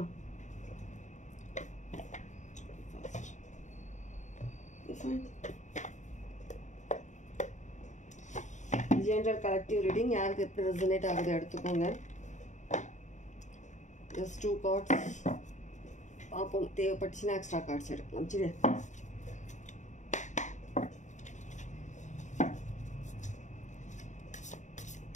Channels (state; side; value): late; right; 0.35 ms